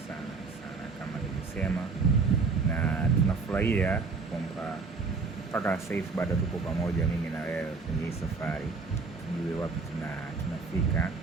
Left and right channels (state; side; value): quieter; left; 4.5 dB